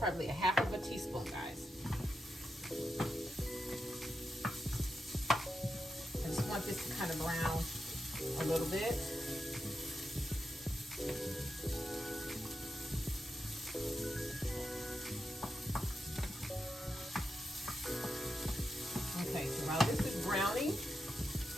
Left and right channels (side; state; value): both; normal; correlation 0.87